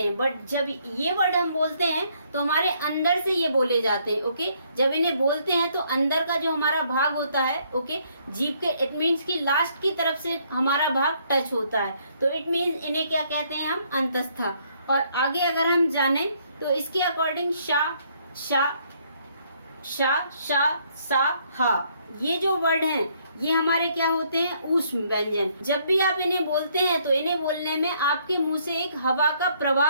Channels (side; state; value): both; inverted; correlation -0.68